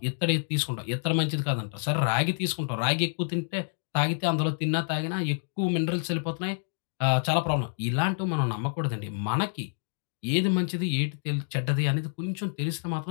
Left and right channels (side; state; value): right; silent; digital silence